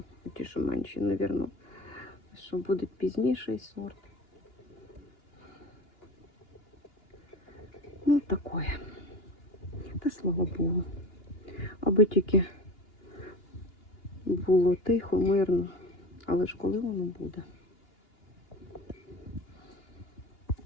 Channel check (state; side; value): late; right; 2.9 ms